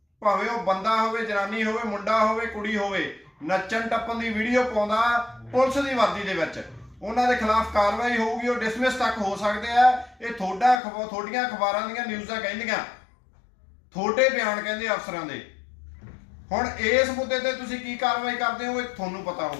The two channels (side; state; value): right; drops out; at 10.8 s